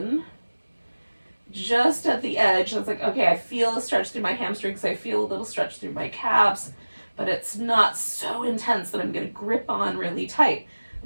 just at the edge. It's like, okay, I feel a stretch through my hamstrings, I feel a little stretch through my calves, but it's not so intense that I'm going to grip on really tight.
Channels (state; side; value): inverted; both; correlation -1.00